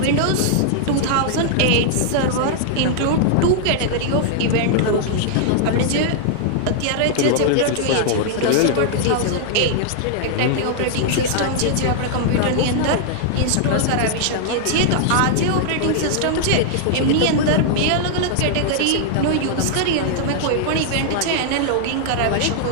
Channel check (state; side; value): different; both; correlation -0.01